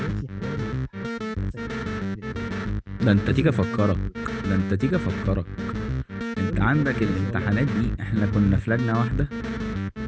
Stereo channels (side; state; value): both; identical; correlation 1.00